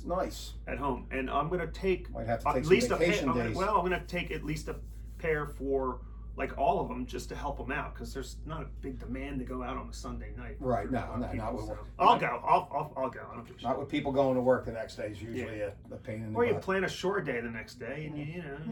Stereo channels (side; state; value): both; identical; correlation 1.00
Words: Nice. At home. And I'm going to take might have to take at least some vacation days. I'm going to take at least a pair for like all of them just to help them out because there's not a big demand to go out on a Sunday night. Right. Not with so. I'll go. I'll go. I don't give a shit. Not with people going to work the next day is usually a pain in the butt. Or you plan a short day the next day and